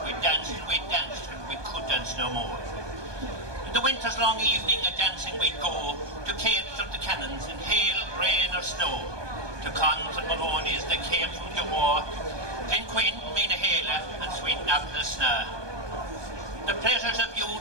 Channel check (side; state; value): left; late; 1.2 ms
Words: we danced, and we could dance no more. In the winter's long evening, a dancing we'd go, to capes of the cannons in hail, rain or snow, to cons and Maloney's that came from the war, Glenquin, Minahala and Sweet Naplasna. The pleasures of